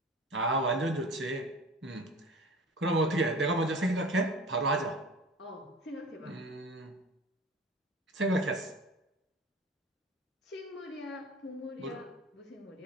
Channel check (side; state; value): both; normal; correlation 0.38